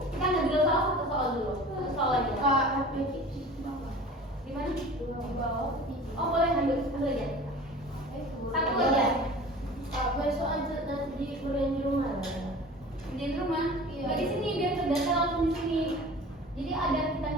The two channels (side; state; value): both; normal; correlation 0.40